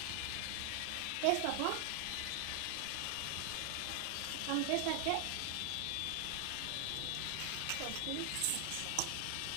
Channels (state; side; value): different; both; correlation 0.00